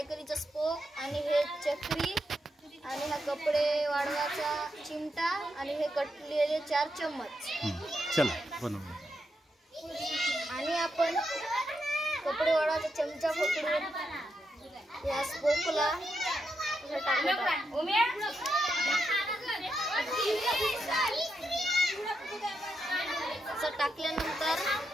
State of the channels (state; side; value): normal; both; correlation 0.84